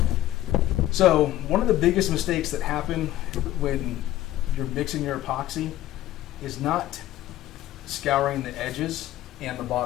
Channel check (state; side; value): quieter; right; 14.3 dB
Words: it. So one of the biggest mistakes that happen when you're mixing your epoxy is not scouring the edges and the